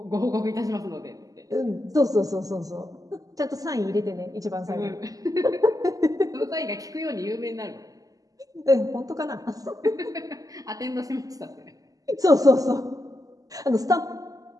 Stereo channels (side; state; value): left; late; 0.17 ms